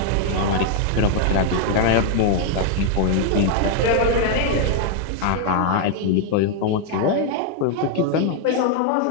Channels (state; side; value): different; both; correlation 0.00